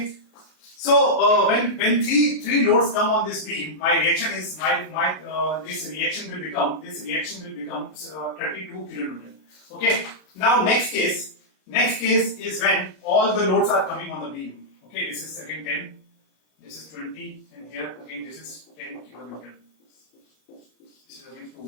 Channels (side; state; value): right; late; 33 ms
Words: So when three loads come on this beam, my reaction is this reaction will become 32 kilonewton. Okay. Now next case is when all the loads are coming on the beam. Okay. This is again 10, this is 20, and here again this is 10 kilonewton. This is again 2